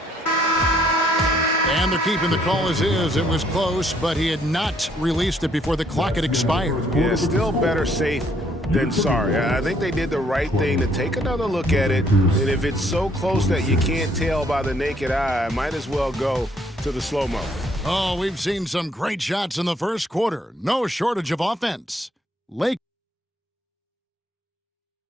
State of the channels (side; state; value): both; normal; correlation 0.67